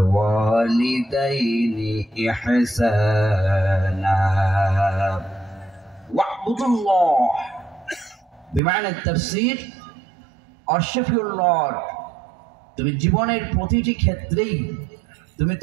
إحسانا واعبدوا الله بمعنى التفسير worship your Lord. তুমি জীবনের প্রতিটি ক্ষেত্রেই তুমি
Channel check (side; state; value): left; drops out; at 8.6 s